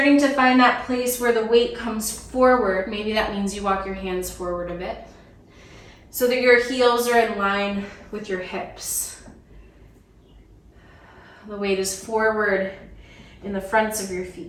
to find that place where the weight comes forward. Maybe that means you walk your hands forward a bit so that your heels are in line with your hips. The weight is forward in the fronts of your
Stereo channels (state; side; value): identical; both; correlation 1.00